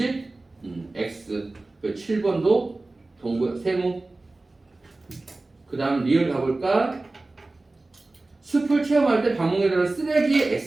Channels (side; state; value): left; quieter; 3.1 dB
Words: X. 그 7번도 세모. 그 다음 리을 가볼까? 숲을 체험할 때 방문에 들어간 쓰레기